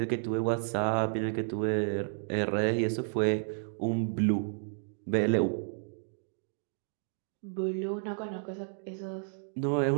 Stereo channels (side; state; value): left; silent; digital silence